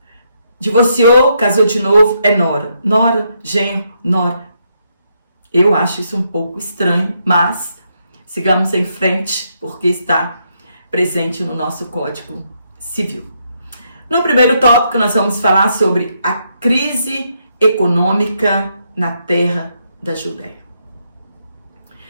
Divorciou, casou de novo, é nora. Nora, genro, nora. Eu acho isso um pouco estranho, mas sigamos em frente, porque está presente no nosso Código Civil. No primeiro tópico, nós vamos falar sobre a crise econômica na terra da Judéia.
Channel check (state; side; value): inverted; both; correlation -0.77